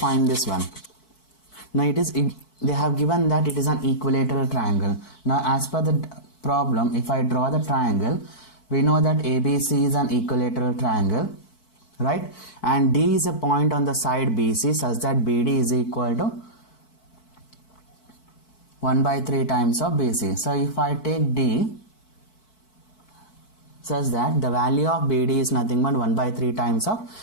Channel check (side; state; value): right; late; 4.6 ms